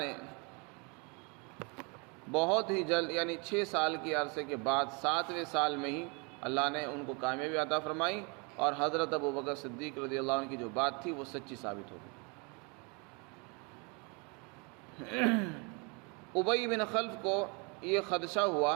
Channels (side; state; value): left; quieter; 32.1 dB